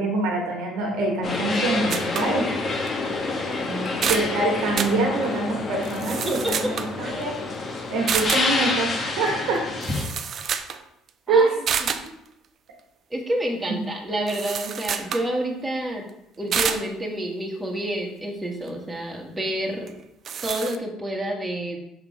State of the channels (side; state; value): both; normal; correlation 0.62